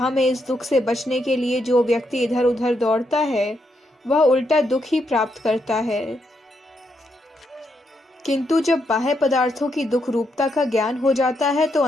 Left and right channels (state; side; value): normal; both; correlation 0.79